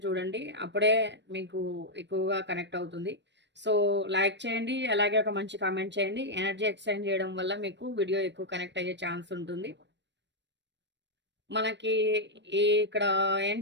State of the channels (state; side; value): late; left; 0.52 ms